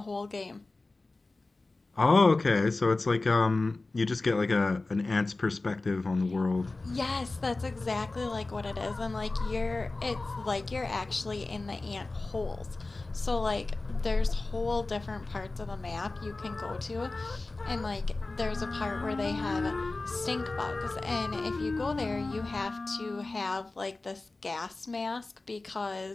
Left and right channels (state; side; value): quieter; right; 3.3 dB